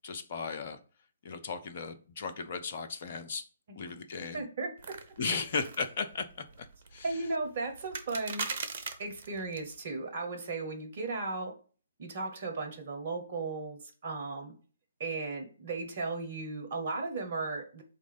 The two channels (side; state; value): both; inverted; correlation -0.62